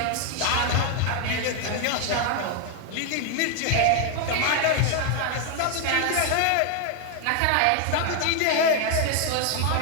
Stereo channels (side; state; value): both; different; correlation 0.00